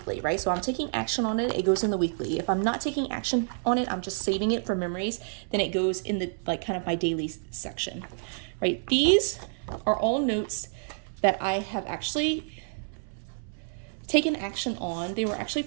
right? So I'm taking action on it, it goes in the weekly. If I'm not taking action on it, I'm just saving it for memories, then it goes in the like kind of my daily section, right? These are all notes that I have actually taken action on. They were actually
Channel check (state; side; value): silent; left; 59 dB below the other